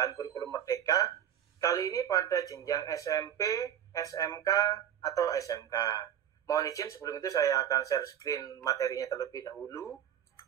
kurikulum merdeka, kali ini pada jenjang SMP, SMK, atau SMK. Mohon izin sebelum itu saya akan share screen materinya terlebih dahulu.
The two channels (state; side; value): quieter; left; 10.1 dB